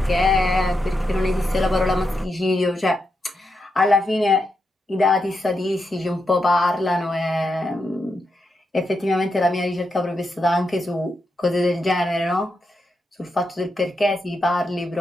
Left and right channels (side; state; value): both; normal; correlation 0.85